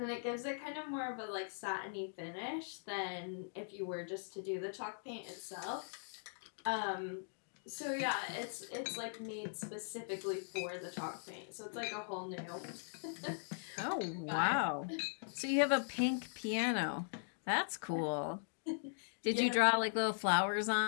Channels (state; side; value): silent; right; digital silence